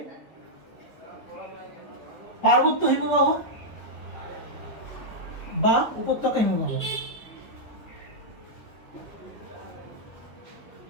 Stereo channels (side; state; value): right; late; 2.5 ms